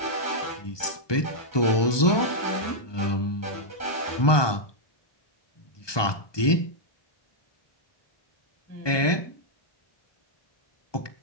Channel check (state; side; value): late; right; 1.2 ms